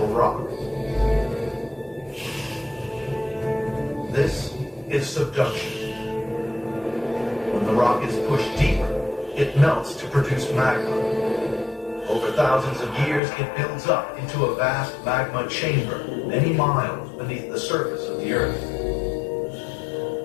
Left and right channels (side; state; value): right; drops out; at 13.2 s